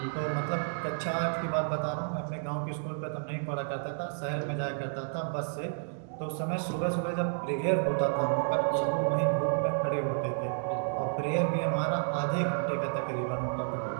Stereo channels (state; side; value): silent; left; digital silence